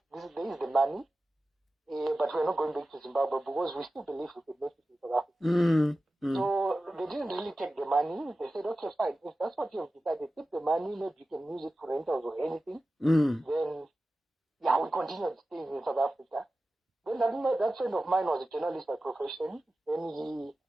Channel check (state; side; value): normal; both; correlation 0.94